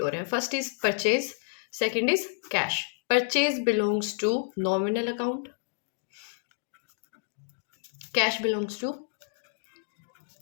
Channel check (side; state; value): right; silent; digital silence